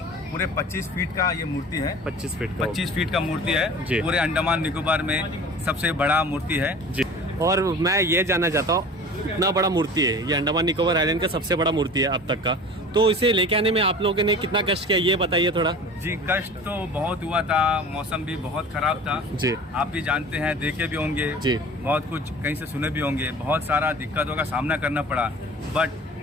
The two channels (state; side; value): normal; both; correlation 0.40